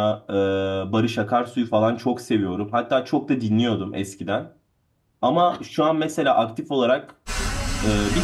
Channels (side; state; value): both; identical; correlation 1.00